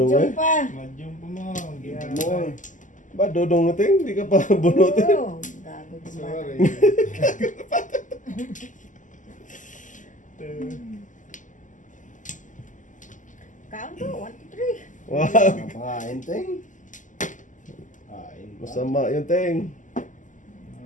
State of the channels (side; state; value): right; late; 0.37 ms